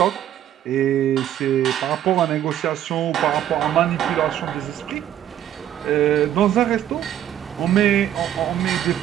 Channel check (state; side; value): quieter; left; 11.3 dB